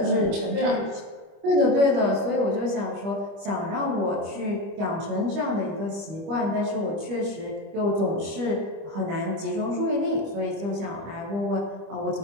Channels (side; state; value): left; late; 25 ms